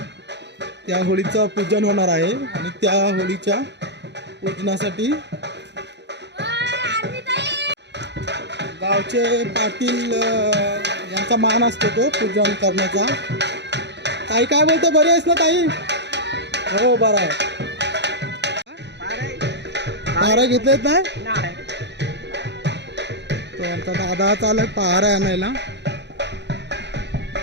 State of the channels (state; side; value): late; left; 0.51 ms